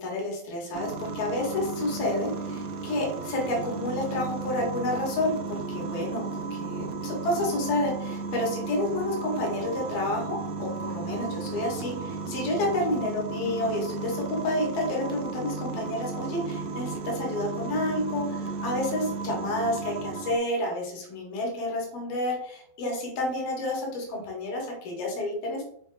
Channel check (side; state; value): right; late; 12 ms